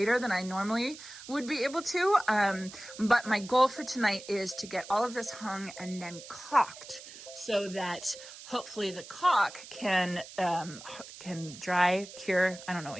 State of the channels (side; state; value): right; noise; hiss, 15 dB below the sound